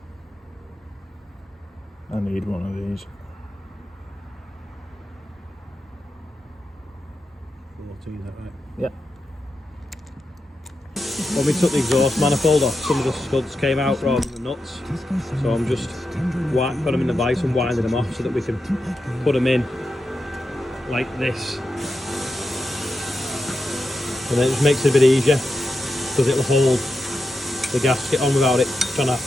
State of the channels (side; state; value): both; normal; correlation 0.88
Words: I need one of these. 14, is that right? Yeah. When we took the exhaust manifold off, some of the studs came out rather than the nuts. So I'm just putting them in the vise and winding them off so that we can put them in like this. And then it just makes it a bit easier because it'll hold the gasket on without it trying to have